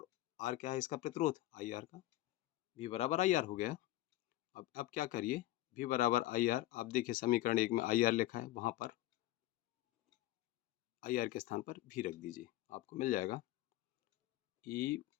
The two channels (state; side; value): quieter; right; 16.2 dB